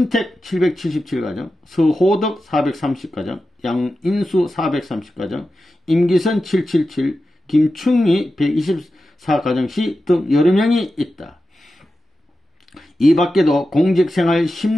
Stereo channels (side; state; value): both; normal; correlation 0.92